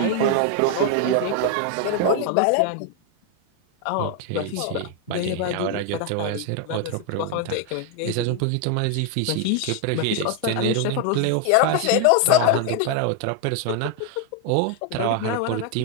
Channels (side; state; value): both; different; correlation 0.01